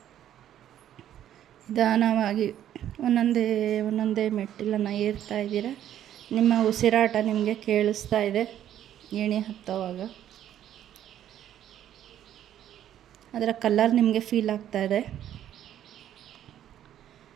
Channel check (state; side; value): quieter; left; 11.1 dB